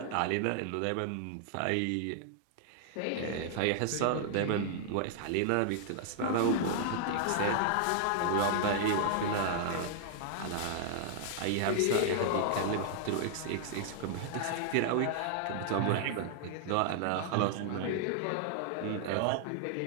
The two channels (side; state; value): both; different; correlation 0.00